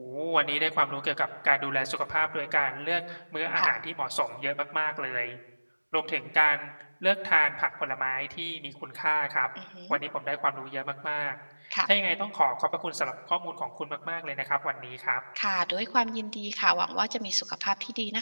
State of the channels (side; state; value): both; inverted; correlation -1.00